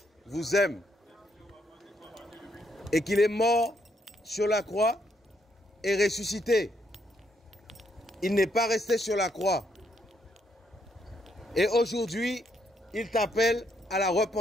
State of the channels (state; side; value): normal; both; correlation 0.74